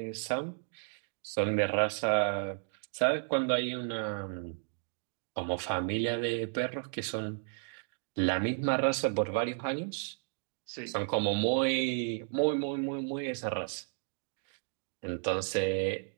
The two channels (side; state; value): left; silent; 56 dB below the other